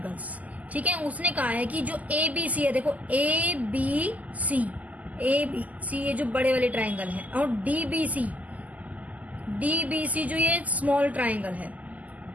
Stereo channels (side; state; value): left; late; 0.077 ms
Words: ठीक है, उसने कहा है कि जो ABC है, देखो ABC ये जो बड़े वाले ट्राइंगल है, और DBC जो ये स्मॉल ट्राइंगल है,